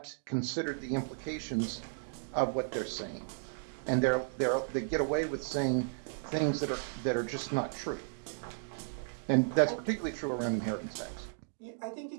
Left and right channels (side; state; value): left; silent; digital silence